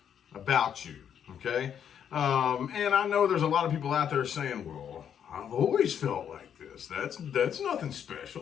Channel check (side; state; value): right; quieter; 8.6 dB